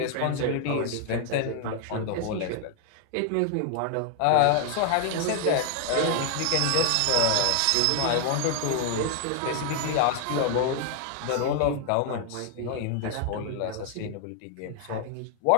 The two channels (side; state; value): both; different; correlation 0.00